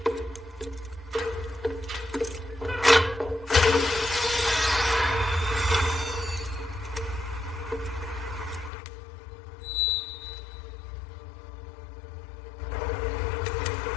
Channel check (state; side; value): drops out; right; at 8.7 s